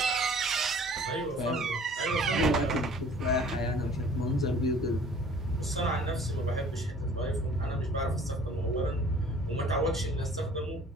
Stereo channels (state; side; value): normal; both; correlation 0.50